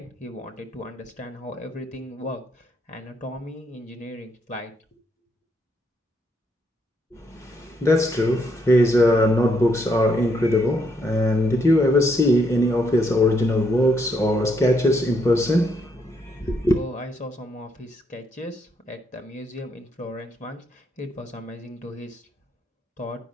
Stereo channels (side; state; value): both; normal; correlation 0.74